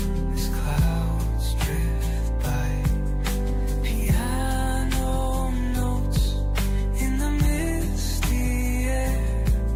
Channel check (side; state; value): both; identical; correlation 1.00